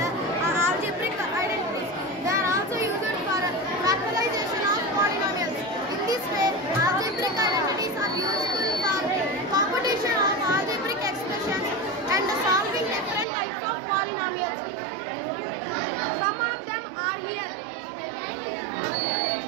algebraic identities. They are also used for factorization of polynomials. In this way, algebraic identities are useful for computation of algebraic expressions and solving different types of polynomials. Some of them are here.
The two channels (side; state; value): left; drops out; at 13.2 s